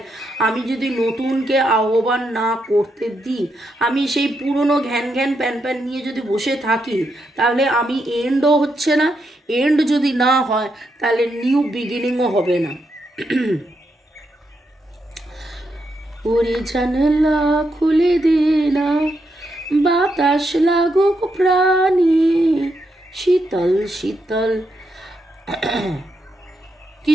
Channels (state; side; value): normal; both; correlation 0.81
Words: আমি যদি নতুনকে আহ্বান না করতে দিই, আমি সেই পুরনো ঘ্যান ঘ্যান প্যান প্যান নিয়ে যদি বসে থাকি, তাহলে আমি এন্ডও হচ্ছে না, এন্ড যদি না হয় তাহলে নিউ বিগিনিংও হবে না। ওরে জানলা খুলে দে না, বাতাস লাগুক প্রাণে শীতল শীতল।